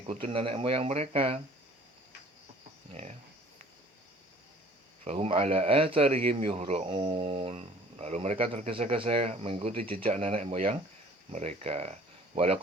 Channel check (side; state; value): both; normal; correlation 0.52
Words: nenek moyang mereka. Ya. Fahum ala atharihim yuhra'un, lalu mereka tergesa-gesa mengikuti jejak nenek moyang mereka.